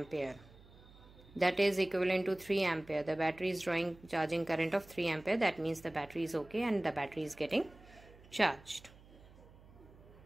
That is equivalent to 3 ampere. The battery is drawing charging current of 3 ampere. That means the battery is okay and the battery is getting charged.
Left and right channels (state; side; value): noise; right; hum, 23 dB below the sound